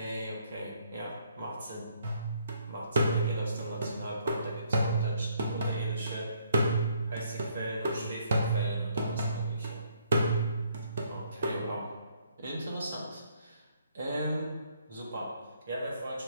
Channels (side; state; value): both; inverted; correlation -0.68